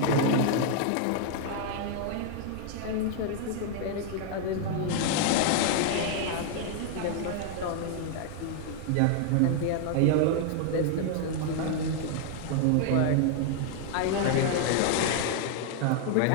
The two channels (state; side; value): different; both; correlation 0.00